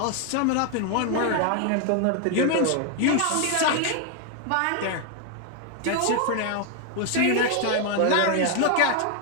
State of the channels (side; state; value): both; different; correlation 0.00